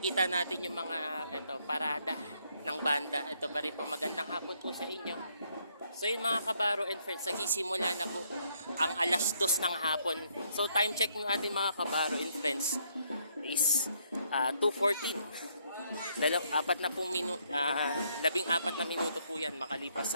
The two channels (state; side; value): inverted; both; correlation -0.71